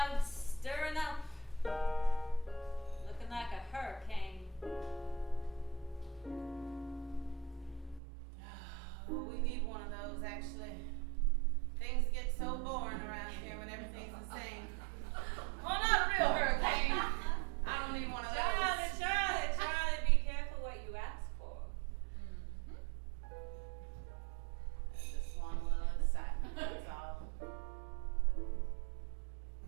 stirring up. Looking like a hurricane. Oh, we need one of those, actually. Things get so boring around here when everything's the same. Well, not a real hurricane. I don't need one of those. Charlie, be careful what you ask for. I just want a little excitement, that's all.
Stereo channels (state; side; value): drops out; left; at 8.0 s